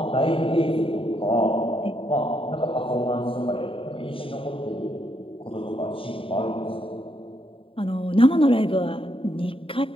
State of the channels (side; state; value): right; late; 0.26 ms